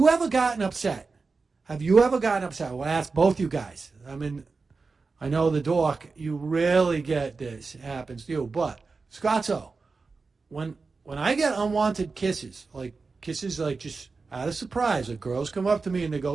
ever gotten upset? Have you ever gotten upset? Well, I ask both you guys. I mean, I know the dork, you rarely get this. It happens to you. But, Scotto, when I get unwanted kisses like just out of surprise, the girls come up to me and they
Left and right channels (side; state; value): left; quieter; 4.3 dB